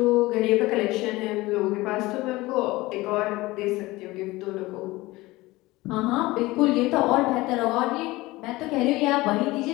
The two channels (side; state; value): right; quieter; 20.0 dB